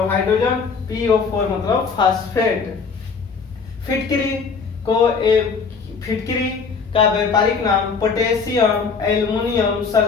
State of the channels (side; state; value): right; quieter; 5.2 dB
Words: हाइड्रोजन, PO4 मतलब फास्फेट। फिटकरी को फिटकरी का व्यापारिक नाम पोटेशियम एल्युमिनियम